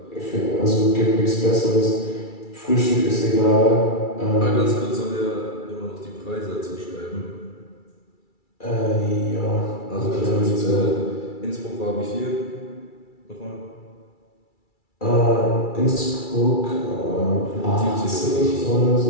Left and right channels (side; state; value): right; late; 2.3 ms